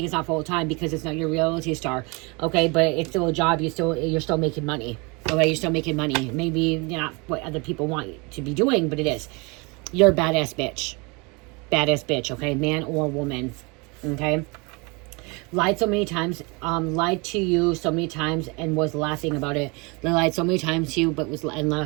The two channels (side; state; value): left; quieter; 28.7 dB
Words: it's not full time because it's not your reality star. Okay, but it's still a job. You're still making money. Okay, you're still making money. Maybe not what other people want you to be doing, but it is. You're a badass bitch. Badass bitch. Okay, man or woman. Okay, lied so many times. Lied to you so many times and was laughing about it. They lied so many times to you, but was